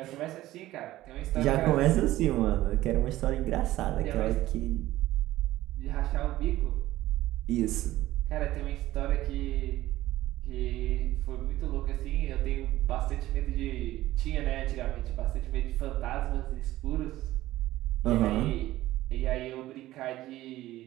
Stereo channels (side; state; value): left; quieter; 15.7 dB